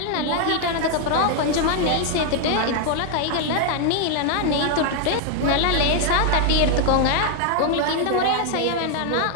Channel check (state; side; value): different; both; correlation 0.00